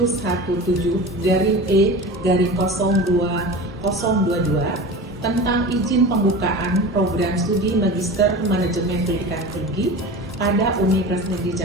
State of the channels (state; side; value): normal; both; correlation 0.32